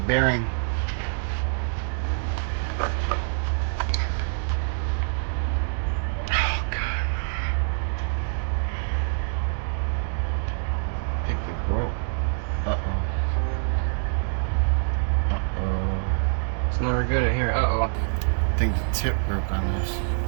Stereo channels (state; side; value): silent; left; 57 dB below the other